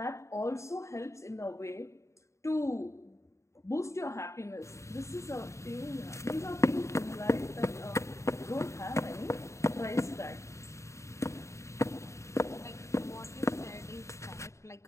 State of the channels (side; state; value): right; late; 0.14 ms